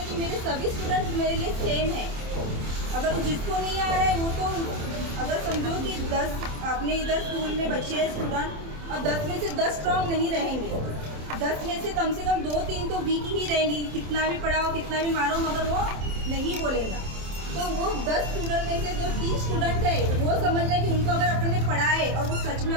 है कि मेरे सभी स्टूडेंट्स मेरे लिए सेम है। अगर जिसको नहीं आ रहा है वो तो अगर समझो कि 10 अपने इधर स्कूल में बच्चे हैं स्टूडेंट और 10 में से 10 स्ट्रॉन्ग नहीं रहेंगे, 10 में से कम 2-3 तो वीक ही रहेंगी। कितना भी पढ़ाओ कितना भी मारो मगर वो नहीं बोलेगा। तो वो 10 स्टूडेंट में से जो 3 स्टूडेंट है वो समझ लें कि उनको अगर अपन ने पढ़ाए और वो सच में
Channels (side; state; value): left; late; 27 ms